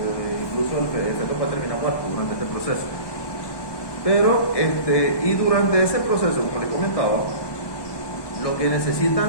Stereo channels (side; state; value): right; late; 1.2 ms